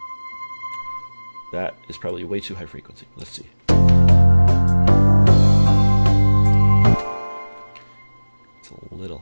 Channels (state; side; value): inverted; both; correlation -1.00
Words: That is probably way too high frequency. Let's see. It's a little